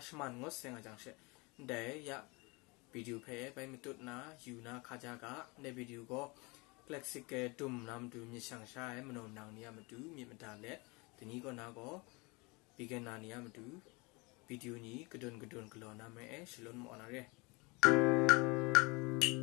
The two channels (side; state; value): right; quieter; 27.2 dB